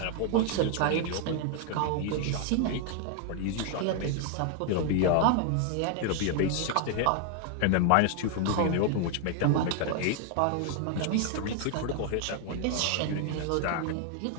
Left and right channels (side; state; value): both; different; correlation 0.00